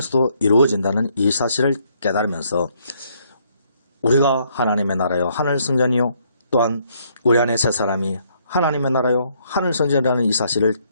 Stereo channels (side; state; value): both; inverted; correlation -0.69